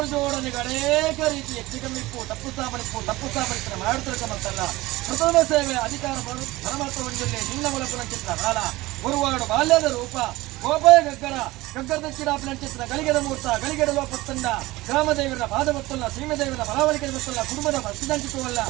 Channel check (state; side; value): quieter; left; 19.3 dB